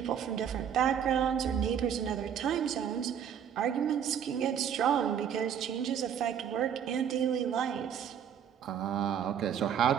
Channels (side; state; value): left; quieter; 8.6 dB